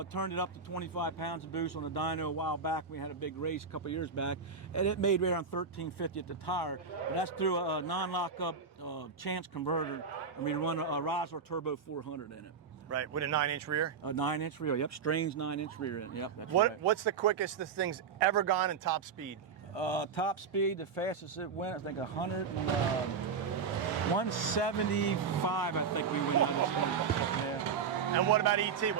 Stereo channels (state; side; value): quieter; left; 5.8 dB